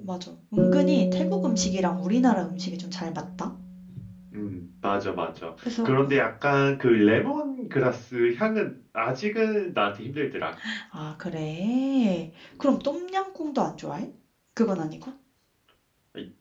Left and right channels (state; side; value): identical; both; correlation 1.00